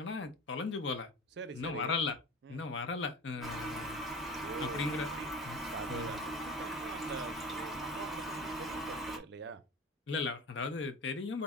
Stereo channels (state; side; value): normal; both; correlation 0.35